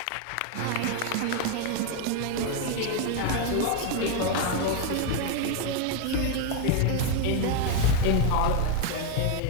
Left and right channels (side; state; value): both; different; correlation 0.01